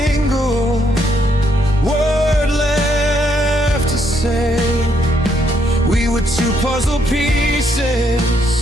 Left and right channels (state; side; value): normal; both; correlation 0.74